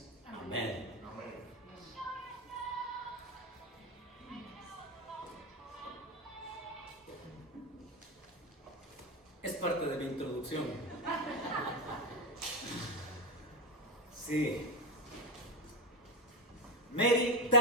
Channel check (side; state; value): both; normal; correlation 0.12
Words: amén. Es parte de mi introducción. Sí. Mary